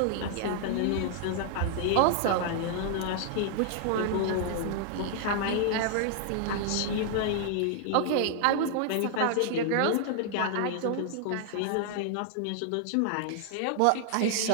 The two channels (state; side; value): different; both; correlation -0.01